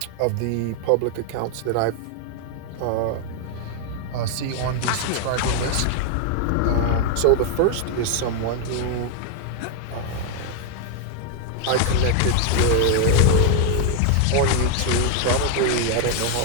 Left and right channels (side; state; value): both; different; correlation 0.00